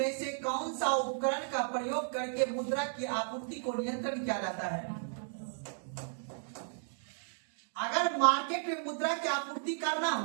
से कौन सा उपकरण का प्रयोग करके मुद्रा की आपूर्ति को नियंत्रण किया जाता है? अगर मार्केट में मुद्रा की आपूर्ति करना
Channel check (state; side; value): silent; left; digital silence